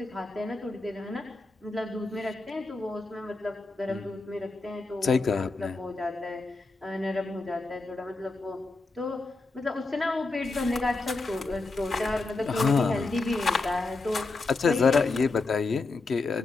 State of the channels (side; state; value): right; quieter; 3.5 dB